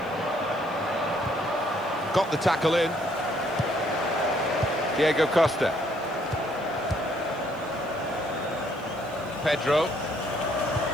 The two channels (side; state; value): left; noise; hiss, 28 dB below the sound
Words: Got the tackle in. Diego Costa. Pedro.